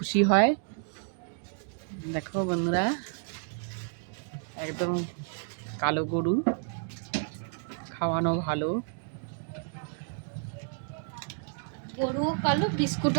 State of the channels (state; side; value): silent; left; digital silence